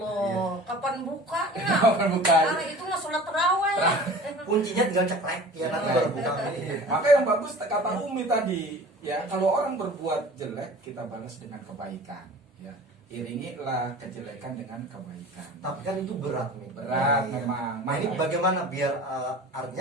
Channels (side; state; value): both; normal; correlation 0.41